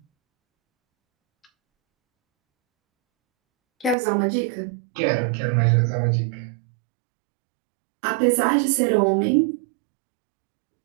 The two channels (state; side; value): drops out; left; at 4.0 s